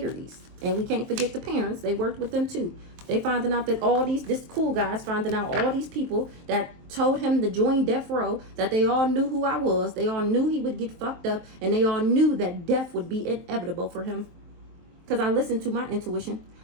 And we can't forget the parents. They worked with them too. They finding out that this cool guy's finding out all these people that told him to join death row, that they all knew who I was. They all knew he would get fucked up, and they all knew that death would be inevitable for him. Because I listened to my intuition.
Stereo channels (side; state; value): left; late; 23 ms